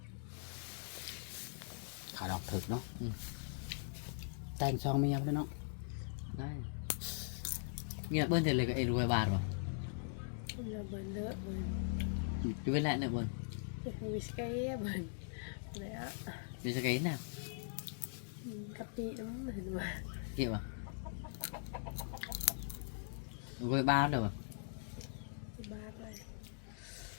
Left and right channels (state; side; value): silent; right; digital silence